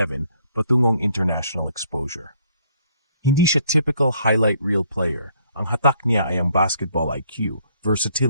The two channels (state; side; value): inverted; both; correlation -0.66